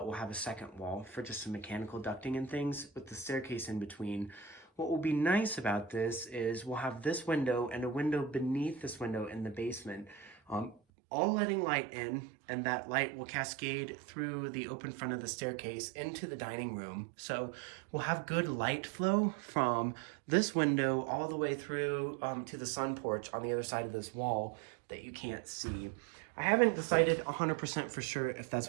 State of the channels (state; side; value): drops out; left; at 10.8 s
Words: we'll have a second wall for just some mechanical ducting and things with the staircase in between. What will be nice about this is we'll have this window and a window beneath this window in the basement, all letting light in, and that light will cascade through the open front of the staircase into the dining room. So we'll have good light flow from this window all the way through to the sun porch on the other side of this wall that you can't see. I haven't decided 100% for sure if